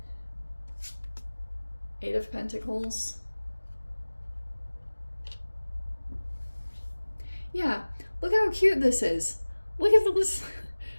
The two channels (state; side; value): inverted; both; correlation -1.00